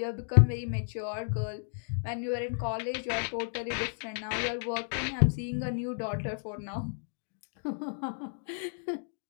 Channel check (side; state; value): right; silent; digital silence